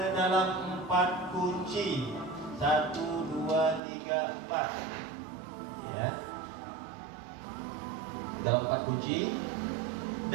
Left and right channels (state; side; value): drops out; left; at 3.8 s